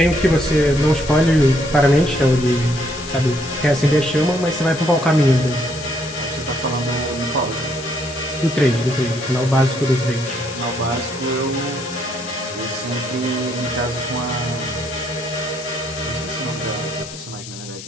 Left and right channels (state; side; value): noise; left; hiss, 13 dB below the sound